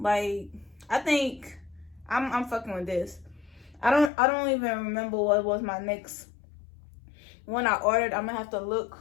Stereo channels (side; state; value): right; drops out; at 4.1 s